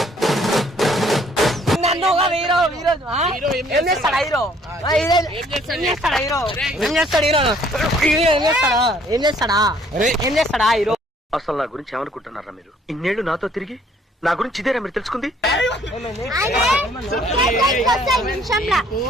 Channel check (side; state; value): both; normal; correlation 0.61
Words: నన్ను ఒక హీరో ఈరోజు హీరో ఏం చేస్తాడా హీరో? ఏం చేస్తాడా హీరో? ఏం చేస్తాడు హీరో? ఏం చేస్తాడా? ఏం చేస్తాడా? ఏం చేస్తాడా హీరో? అసలు నా గురించి ఏమనుకుంటున్నారా మీరు? ఇన్నేళ్లు నాతో తిరిగి నా గురించి ఇదేనా మీరు తెలుసుకుంది? నిమిషంలో